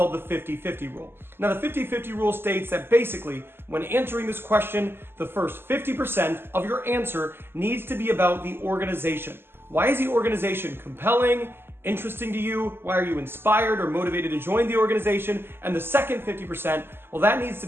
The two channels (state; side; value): late; left; 0.11 ms